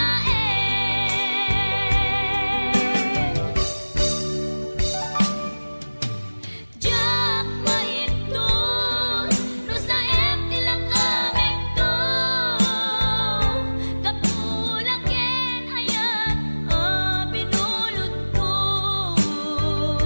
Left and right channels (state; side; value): inverted; both; correlation -1.00